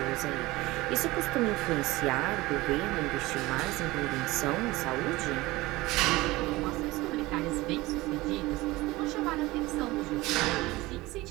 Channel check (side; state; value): left; quieter; 19.9 dB